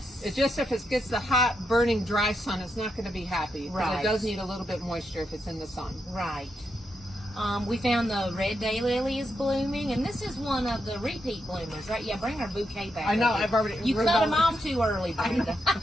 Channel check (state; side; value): normal; both; correlation 0.83